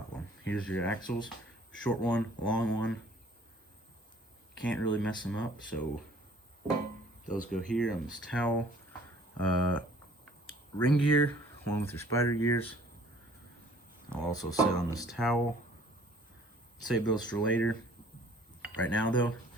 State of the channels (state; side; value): normal; both; correlation 0.55